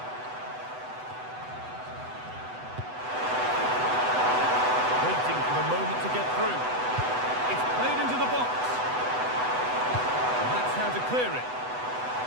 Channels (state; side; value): late; left; 8.0 ms